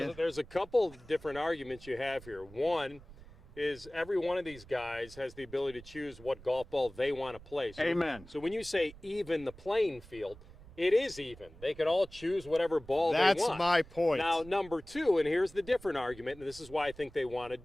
Well, there's a couple different arguments you have here. One is every one of these guys has the ability to choose what golf ball they want to play. So, Amen. So when you say even the playing field, it is even. They can all choose whatever ball they want. That's my point. Now, number two, and here's the different argument, and this is why I think they want to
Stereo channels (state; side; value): noise; right; rumble, 20 dB below the sound